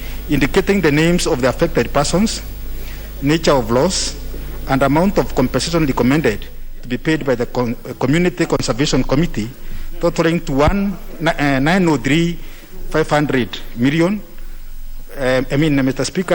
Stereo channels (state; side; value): identical; both; correlation 1.00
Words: indicating the names of the affected persons, nature of loss, and amount of compensation recommended to be paid by the Community Conservation Committee, totaling to 903,500 million. Mr.